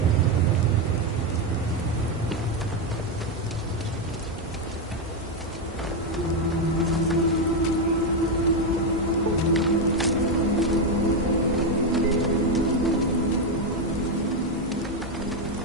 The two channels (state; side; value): normal; both; correlation 0.06